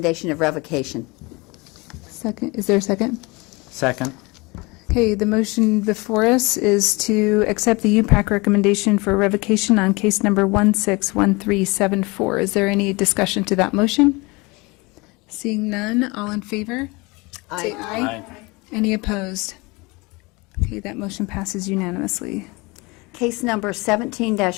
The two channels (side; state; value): right; quieter; 25.6 dB